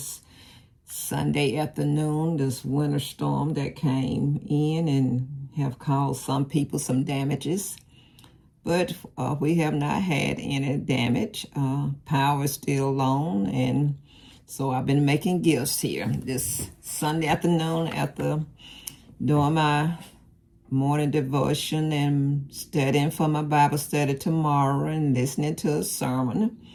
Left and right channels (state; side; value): identical; both; correlation 1.00